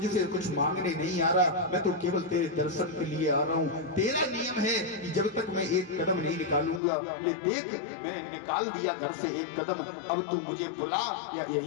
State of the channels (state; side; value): drops out; right; at 6.8 s